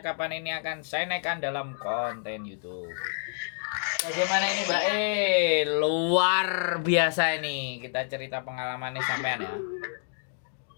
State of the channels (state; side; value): silent; right; digital silence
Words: ini akan saya naikkan dalam konten YouTube. Bagaimana ini Mbak? Luar biasa ini. Kita cerita pengalamannya sampean ya.